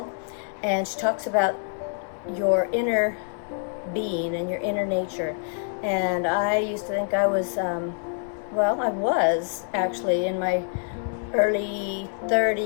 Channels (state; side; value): silent; right; digital silence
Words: and she talks about your inner being and your inner nature. And I used to think I was well, I was actually in my early